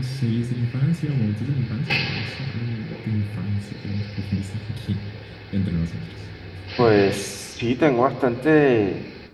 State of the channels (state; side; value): identical; both; correlation 1.00